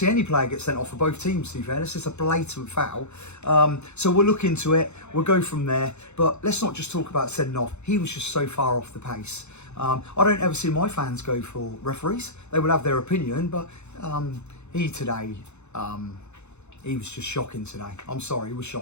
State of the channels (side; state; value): right; late; 0.82 ms